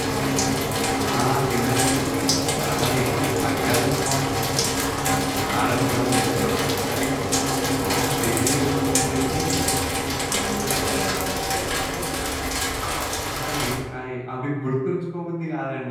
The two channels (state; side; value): identical; both; correlation 1.00